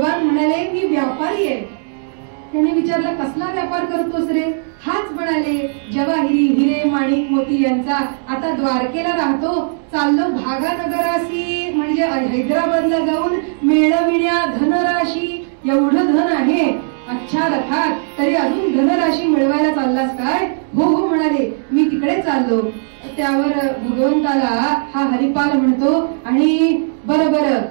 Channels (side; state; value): left; silent; digital silence